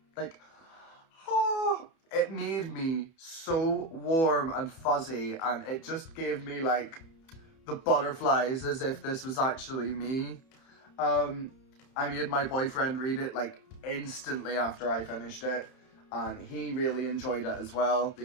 like, it made me so warm and fuzzy, and it just gave me, like, the butterflies as if this was actually me. I made my boyfriend read it, like, instantly after I finished it, and he really enjoyed it as well.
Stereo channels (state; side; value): late; right; 31 ms